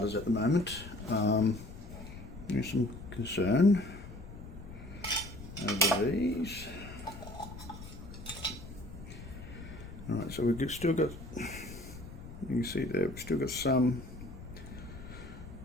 at the moment. There's some concern over these. All right, so we've still got, you can see there, we've still got some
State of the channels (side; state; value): left; noise; rumble, 13 dB below the sound